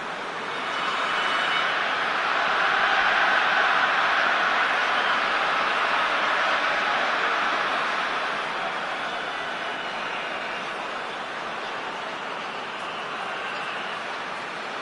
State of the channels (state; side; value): identical; both; correlation 1.00